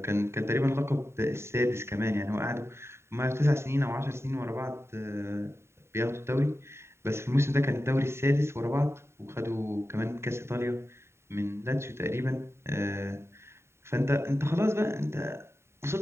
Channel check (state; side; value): late; left; 0.13 ms